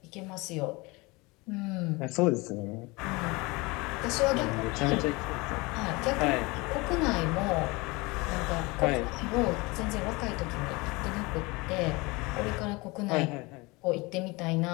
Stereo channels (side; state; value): right; quieter; 24.8 dB